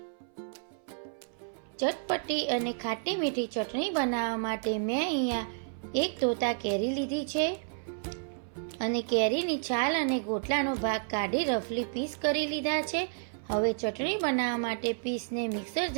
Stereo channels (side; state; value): left; silent; 57 dB below the other